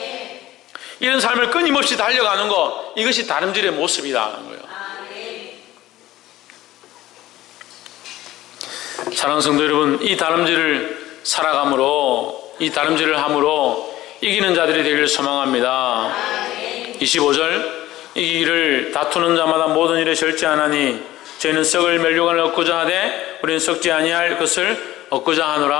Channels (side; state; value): right; quieter; 15.5 dB